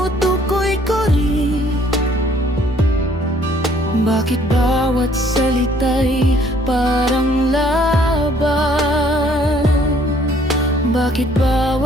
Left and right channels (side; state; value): both; normal; correlation 0.61